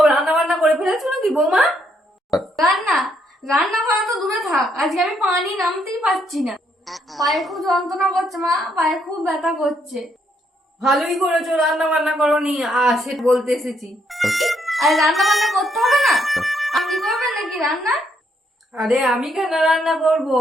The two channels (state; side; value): normal; both; correlation 0.73